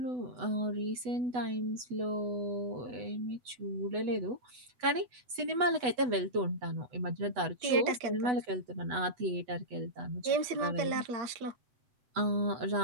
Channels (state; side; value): late; left; 8.0 ms